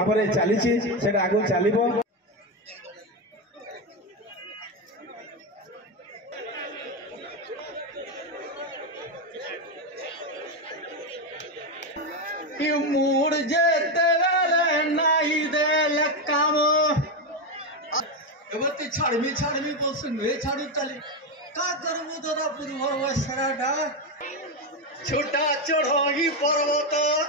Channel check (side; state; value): both; normal; correlation 0.10